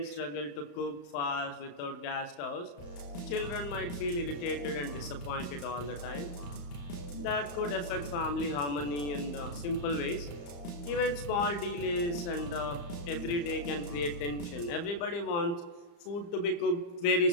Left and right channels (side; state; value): right; late; 35 ms